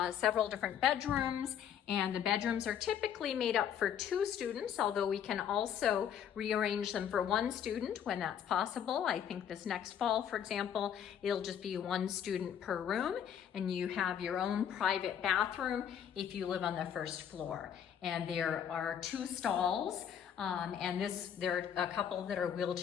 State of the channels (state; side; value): quieter; right; 8.9 dB